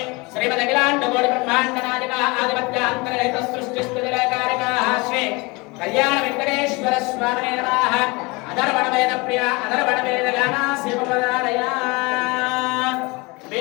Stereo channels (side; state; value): right; quieter; 26.0 dB